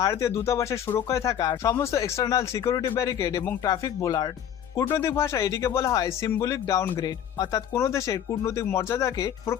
দূতাবাসের সুরক্ষায় থাকা সমস্ত এক্সটার্নাল সিকিউরিটি ব্যারিকেড এবং ট্রাফিক বোলার্ড। কূটনৈতিক ভাষায় এটিকে বলা হয় সিম্বলিক ডাউনগ্রেড, অর্থাৎ কোনো দেশের কূটনৈতিক মর্যাদাকে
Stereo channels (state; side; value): quieter; right; 9.6 dB